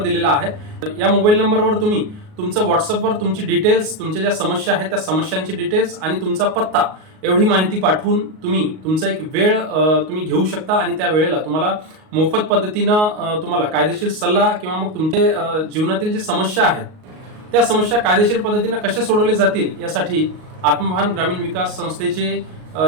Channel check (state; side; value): late; left; 38 ms